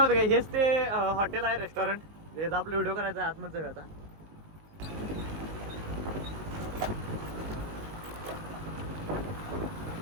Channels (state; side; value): late; left; 19 ms